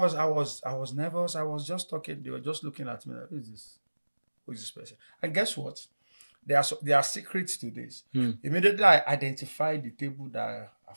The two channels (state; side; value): inverted; both; correlation -1.00